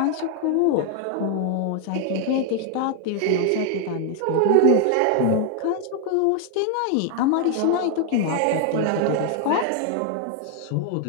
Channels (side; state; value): both; different; correlation 0.00